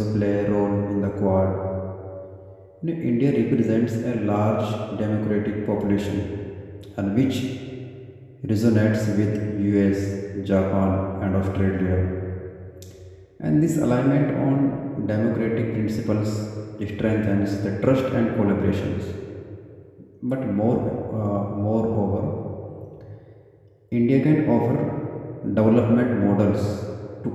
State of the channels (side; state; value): both; identical; correlation 1.00